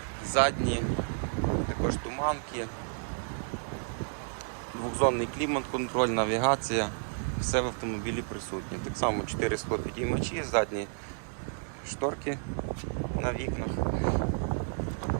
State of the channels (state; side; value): silent; left; digital silence